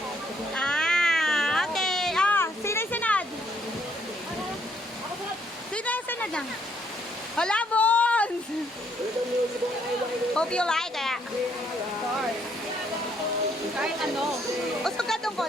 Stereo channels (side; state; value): both; normal; correlation 0.69